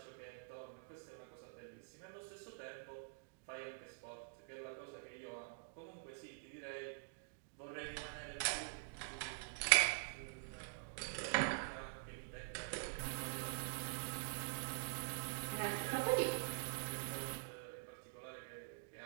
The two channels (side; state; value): left; silent; digital silence